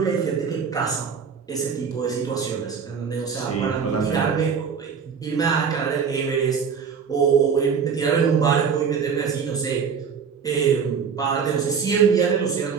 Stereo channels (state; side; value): quieter; left; 6.4 dB